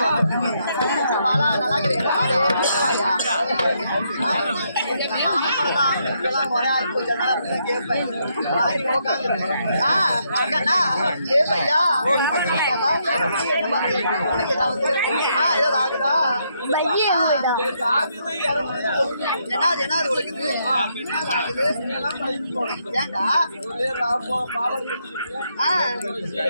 பாலா நல்லா இருக்கிறீங்களா? ஒரே ஆள் போச்சு கேட்பேன் கேட்பையா உனக்கு ஏதாவது ஏதாவது ஆகுதா? என்னது உனக்கு ஏண்டா?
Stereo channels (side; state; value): both; inverted; correlation -0.76